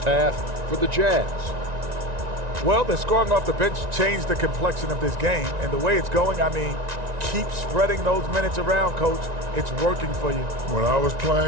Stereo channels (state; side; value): late; left; 1.9 ms